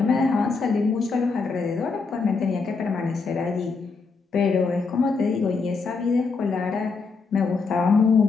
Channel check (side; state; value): right; quieter; 4.5 dB